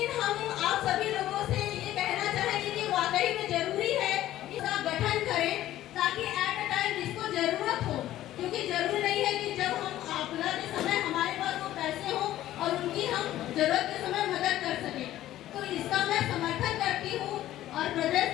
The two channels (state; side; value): quieter; right; 13.8 dB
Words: हम आप सभी लोगों से ये कहना चाहेंगे कि वाकई में जरूरी है इसका गठन करें ताकि एट अ टाइम जिसको जरूरत हो, क्योंकि जरूरी नहीं है कि जब हम आपदा के समय हमारे पास वो पैसे हो और उनकी हम जरूरत के समय मदद कर सकें। तो इसका मैं समर्थन करती हूँ और